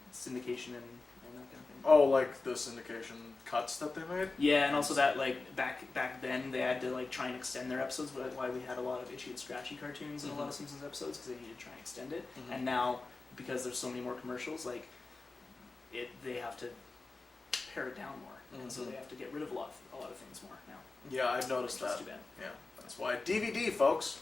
syndication and that kind of thing. Oh, like the syndication cuts that they made? Yeah, and also that, like, back then, they had to, like, try and extend their episodes, why we had a lot of itchy and scratchy cartoons in a lot of Simpsons episodes, because they needed to try and extend it. And now, because there's so many more commercials, like, they have to pare it down more, and so they have to get rid of a lot of things more now. Yeah, I've noticed Which is that. too bad. Yeah, that's why. DVD, folks.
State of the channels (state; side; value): quieter; right; 3.6 dB